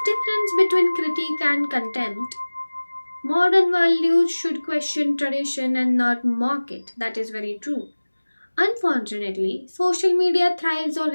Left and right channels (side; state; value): both; inverted; correlation -1.00